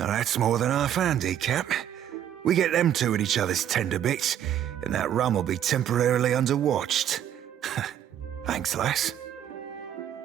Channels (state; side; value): quieter; left; 10.4 dB